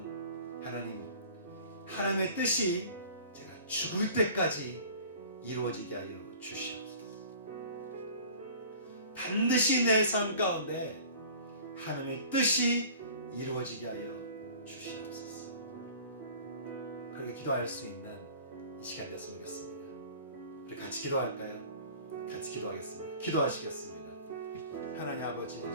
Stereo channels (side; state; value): both; inverted; correlation -0.45